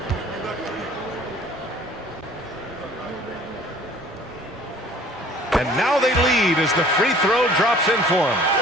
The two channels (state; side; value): normal; both; correlation 0.51